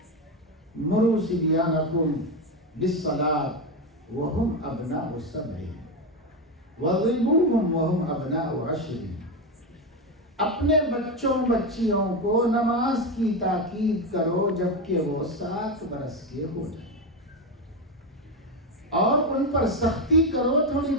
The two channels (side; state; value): both; normal; correlation 0.13